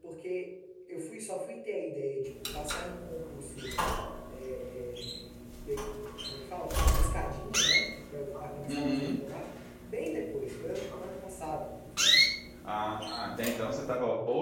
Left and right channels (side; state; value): both; identical; correlation 1.00